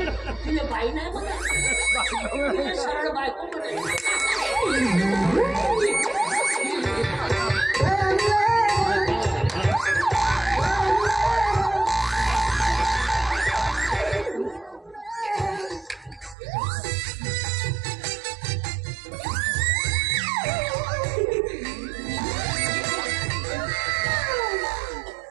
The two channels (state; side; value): drops out; left; at 16.4 s